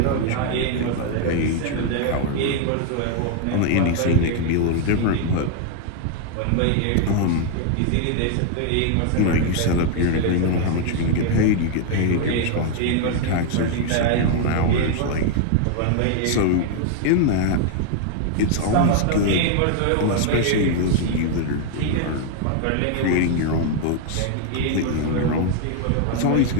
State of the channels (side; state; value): both; different; correlation 0.00